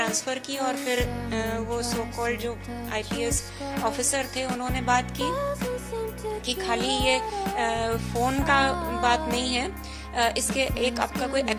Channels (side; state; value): both; identical; correlation 1.00